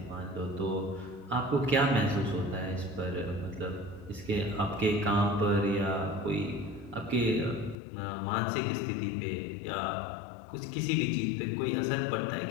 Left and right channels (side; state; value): right; drops out; at 7.8 s